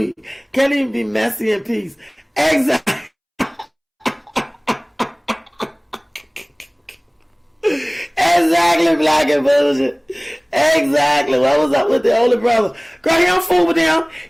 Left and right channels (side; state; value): both; identical; correlation 1.00